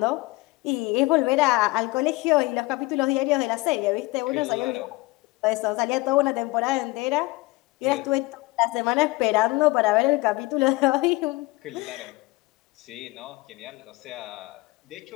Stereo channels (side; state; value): right; quieter; 22.5 dB